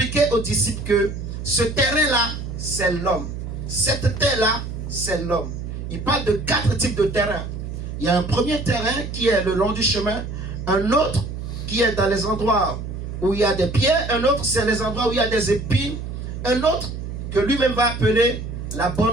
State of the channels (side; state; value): right; noise; hum, 7 dB below the sound